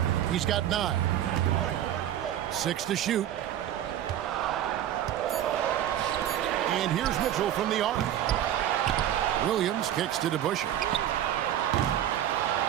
He's got 9. 6 to shoot. And here's Mitchell from the arc. Williams kicks to DeBusschere.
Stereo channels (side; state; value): left; quieter; 11.4 dB